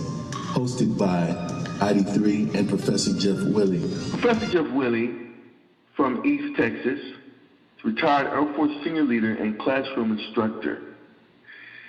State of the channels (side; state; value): both; identical; correlation 1.00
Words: hosted by ID3 and Professor Jeff Willie. Professor Jeff Willie from East Texas, retired Air Force senior leader and classroom instructor.